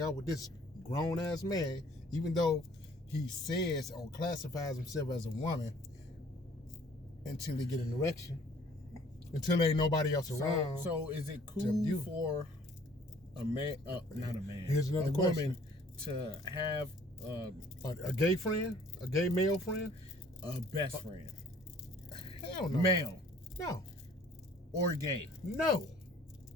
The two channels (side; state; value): both; normal; correlation 0.55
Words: out with this grown ass man, even though he says or classifies himself as a woman, until they get an erection. Until there ain't nobody else around. So is it cool for a man, not a man, Here's another woman to have a gay friend, a gay male friend, a best friend? Hell no. Male. No. Or gay? No.